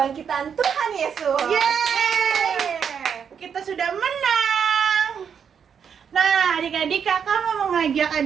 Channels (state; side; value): quieter; left; 7.3 dB